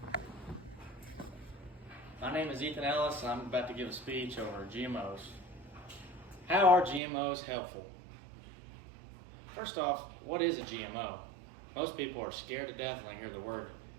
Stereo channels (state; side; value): drops out; left; at 7.0 s